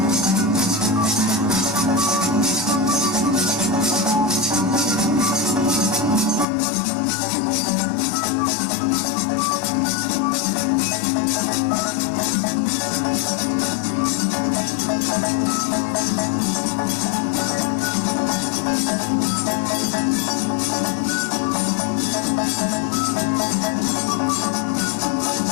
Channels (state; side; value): drops out; right; at 6.5 s